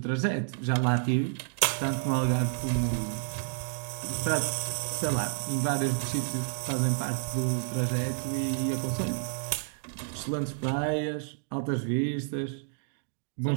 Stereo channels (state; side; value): silent; left; digital silence